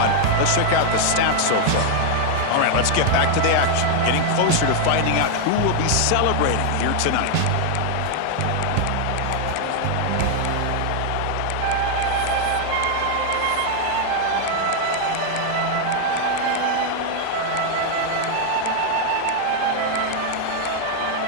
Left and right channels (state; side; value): different; both; correlation 0.00